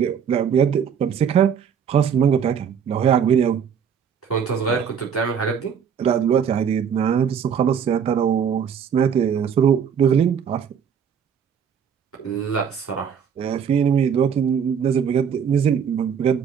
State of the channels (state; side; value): quieter; left; 7.5 dB